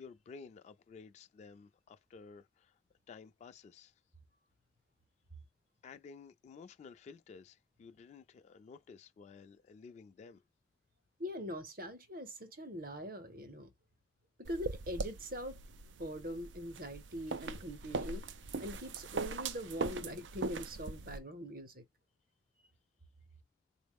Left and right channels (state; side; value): normal; both; correlation 0.19